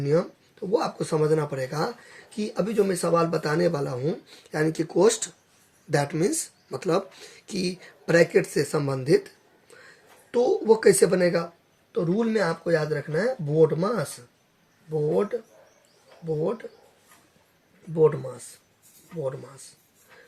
नियम। तो वो आपको समझना पड़ेगा कि अभी जो मैं सवाल बताने वाला हूँ यानी कि कोस्ट, दैट मीन्स मतलब कि ब्रैकेट से संबंधित, तो वो कैसे बनेगा। तो रूल में आपको याद रखना है बोर्ड मास, बोर्ड बोर्ड बोर्ड मास, बोर्ड मास,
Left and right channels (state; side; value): identical; both; correlation 1.00